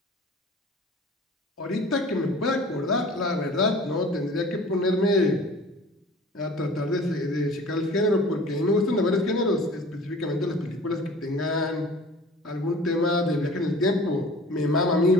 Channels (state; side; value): normal; both; correlation 0.44